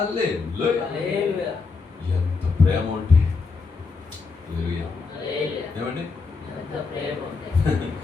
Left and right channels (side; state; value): right; quieter; 4.6 dB